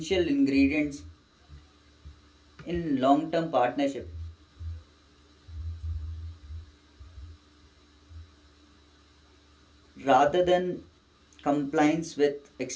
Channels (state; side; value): identical; both; correlation 1.00